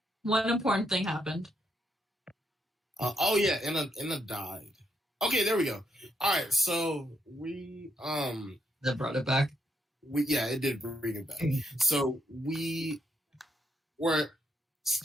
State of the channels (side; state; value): both; normal; correlation 0.79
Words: One important thing happened. Oh yeah, Inna died. Okay, there we go. All right, so we That brought it back. it did bring it back. So we were